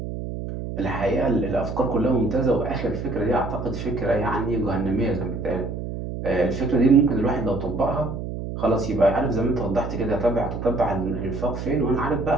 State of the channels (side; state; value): right; noise; hum, 6 dB below the sound